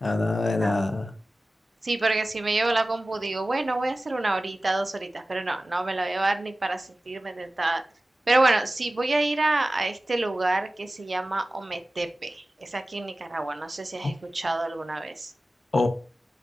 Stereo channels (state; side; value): normal; both; correlation 0.96